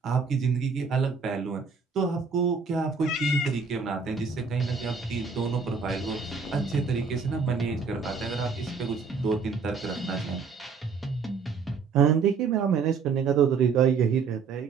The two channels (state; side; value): quieter; left; 5.3 dB